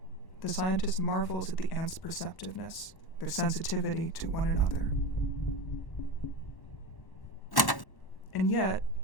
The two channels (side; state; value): right; late; 1.1 ms